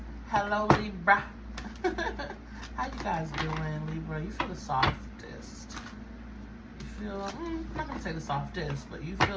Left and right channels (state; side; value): identical; both; correlation 1.00